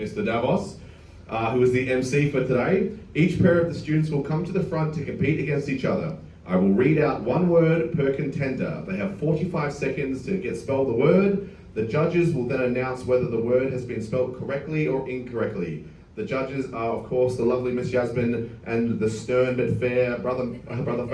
Davos, who is the MC for today. Each pair of the students will come to the front to compete against each other. I will read out 1 word per contender. They have 45 seconds to spell the word. The judges will then announce whether the word has been spelled correctly or incorrectly. The judges are, of course, the lovely Miss Yasmin and the stern but fair brother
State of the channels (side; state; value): both; identical; correlation 1.00